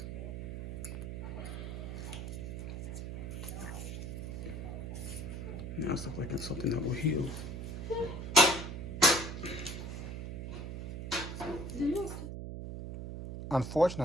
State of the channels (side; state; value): right; noise; hum, 6 dB below the sound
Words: Now it's looking like it's something that will heal.